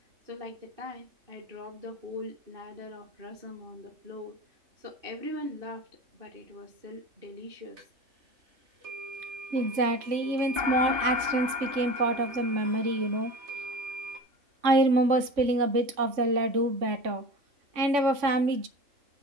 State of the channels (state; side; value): late; left; 3.5 ms